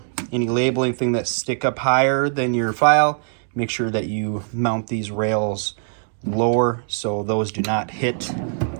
any labeling thing that stick up higher than your file, make sure that you mount these rails lower so those do not hit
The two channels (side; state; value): left; silent; 59 dB below the other